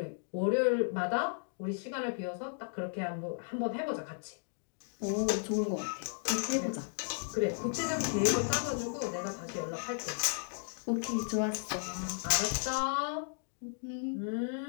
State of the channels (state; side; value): silent; right; digital silence